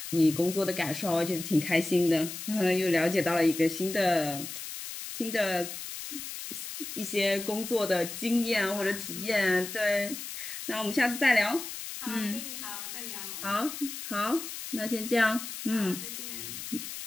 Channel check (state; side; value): noise; left; hiss, 8 dB below the sound